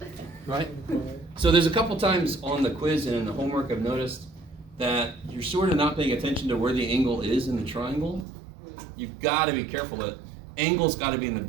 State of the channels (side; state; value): left; drops out; at 8.2 s